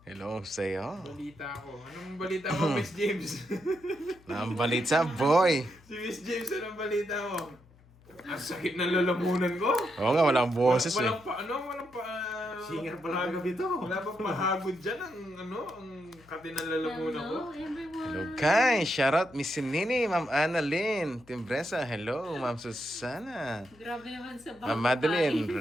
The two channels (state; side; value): noise; left; hum, 27 dB below the sound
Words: hello sa'yo. Balita ko. Anong balita mo, Miss James? Ma'am Balitsa, boy. Si Miss James, anong balita mo? Ang sakit ng lalamunan ko. Oo nga, walang boses eh. Walang pa, walang pa... Singer pala kagabi to. Wala pa pahagod dyan ang, ang kati ng lalamunan ko. Hello, everyone. Hello guys, shout out Miss Nini, Ma'am Annalyn, Timbresa, hello, Ma'am Susana. Grabe naman sa bangkay. Ma'am Madeline